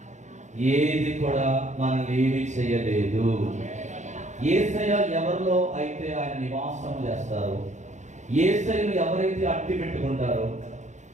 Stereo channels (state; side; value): late; left; 0.34 ms